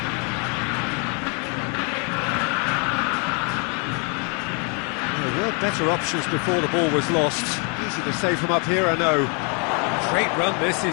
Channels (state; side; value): quieter; right; 36.1 dB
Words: There were better options before the ball was lost. Easy to say from up here, I know. Great run this,